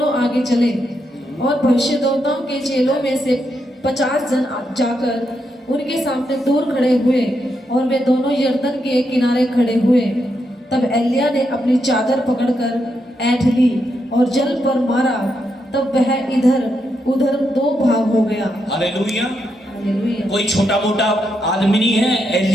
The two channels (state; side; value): normal; both; correlation 0.82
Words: आगे चले, और भविष्यद्वक्ताओं के चेलों में से 50 जन जाकर उनके सामने दूर खड़े हुए, और वे दोनों यरदन के किनारे खड़े हुए। तब एलिय्याह ने अपनी चादर पकड़कर ऐंठ ली और जल पर मारा, तब वह इधर उधर 2 भाग हो गया। हालेलुया। हालेलुया। कोई छोटा मोटा आदमी नहीं है,